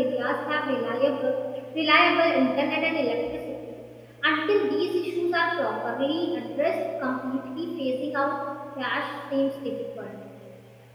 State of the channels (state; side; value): identical; both; correlation 1.00